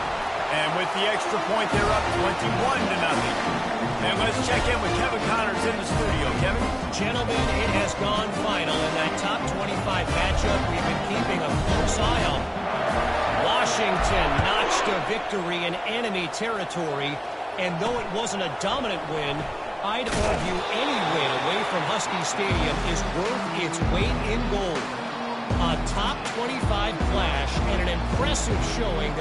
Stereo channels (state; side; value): identical; both; correlation 1.00